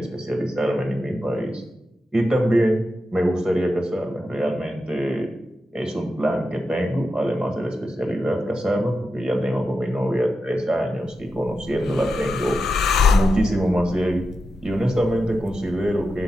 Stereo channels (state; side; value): normal; both; correlation 0.89